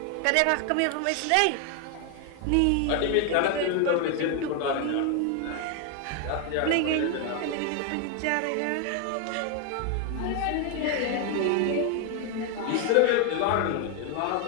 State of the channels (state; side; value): different; both; correlation 0.01